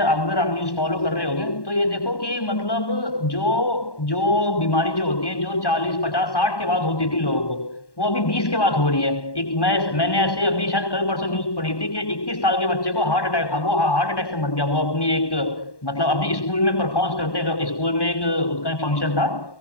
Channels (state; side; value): late; right; 1.1 ms